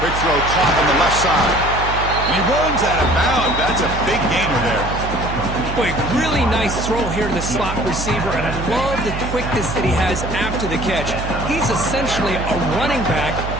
Quick throw caught on the left side. And he runs out of bounds. That's a big gainer there. Boy, really nice throw here to the slot receiver, and I love the quickness that he has after the catch. He's essentially a running back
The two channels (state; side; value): noise; right; hum, 6 dB below the sound